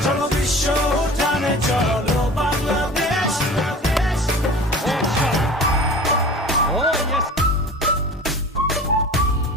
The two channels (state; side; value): normal; both; correlation 0.39